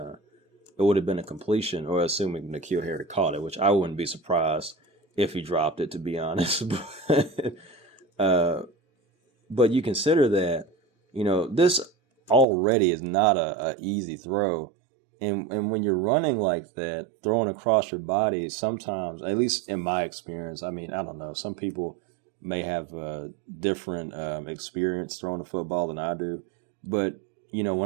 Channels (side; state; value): left; drops out; at 12.5 s